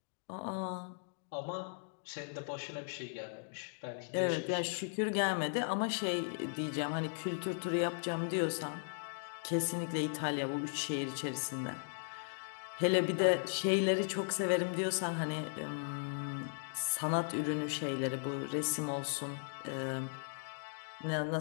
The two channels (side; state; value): right; silent; digital silence